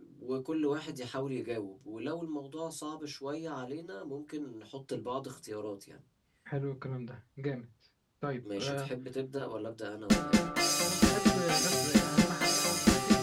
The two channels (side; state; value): both; identical; correlation 1.00